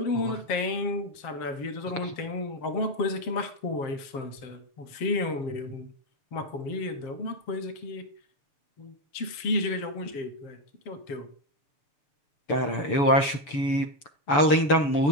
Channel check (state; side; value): late; right; 6.9 ms